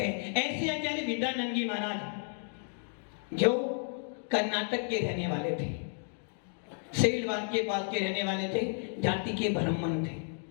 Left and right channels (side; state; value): right; silent; 56 dB below the other